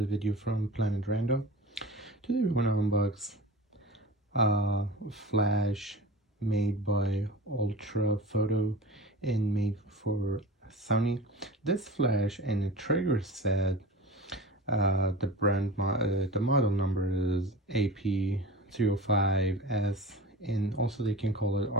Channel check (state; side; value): normal; both; correlation 0.34